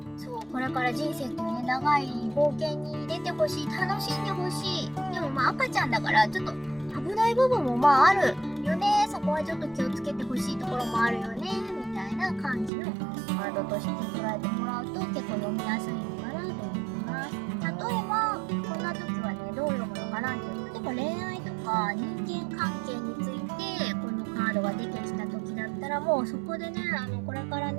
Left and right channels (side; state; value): left; drops out; at 12.7 s